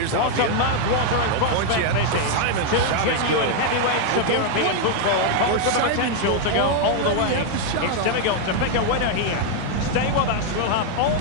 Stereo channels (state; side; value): different; both; correlation 0.00